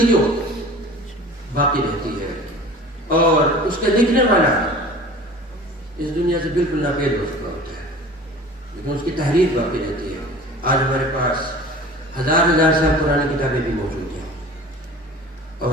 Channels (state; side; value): normal; both; correlation 0.42